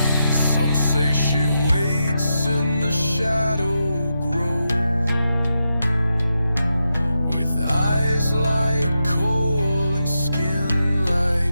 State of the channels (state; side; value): inverted; both; correlation -0.87